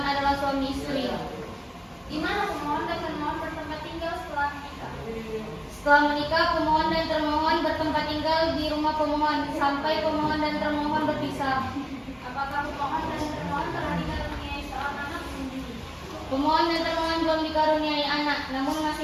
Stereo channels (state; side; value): identical; both; correlation 1.00